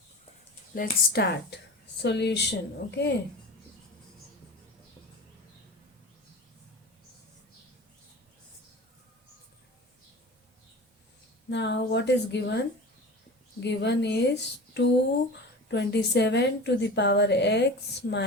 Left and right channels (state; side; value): normal; both; correlation 0.34